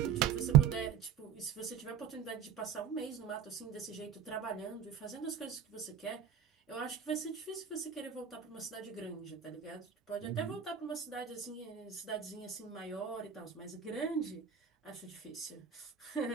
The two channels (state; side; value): quieter; left; 8.2 dB